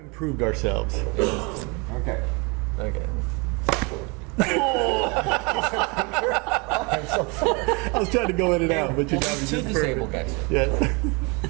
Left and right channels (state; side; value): quieter; left; 30.0 dB